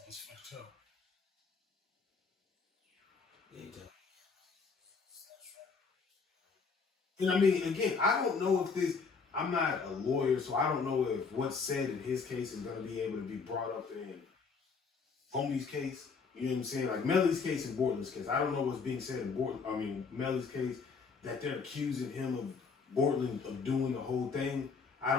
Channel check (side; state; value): right; quieter; 5.1 dB